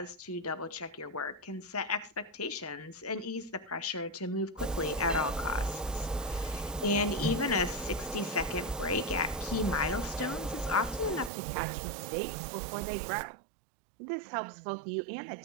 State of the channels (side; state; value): left; drops out; at 11.3 s